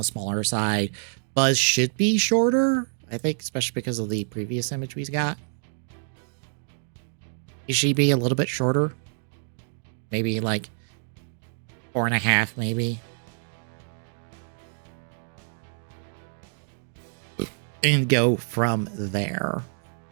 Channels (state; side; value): silent; left; digital silence